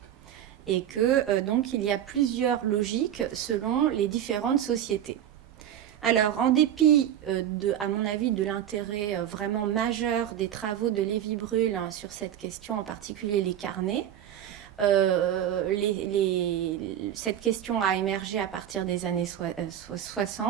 et que donc il y a plusieurs logiques selon les différentes sociétés. Alors, en dépit, à mon avis, de l'intérêt vraiment majeur des travaux de Lévy-Bruhl sur cette question, en particulier les carnets, cette question a émergé à partir des années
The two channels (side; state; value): left; quieter; 10.6 dB